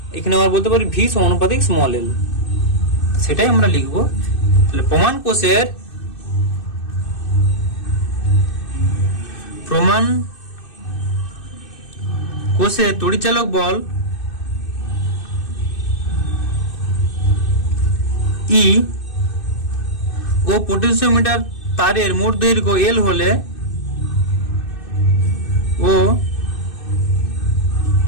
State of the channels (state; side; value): late; right; 2.6 ms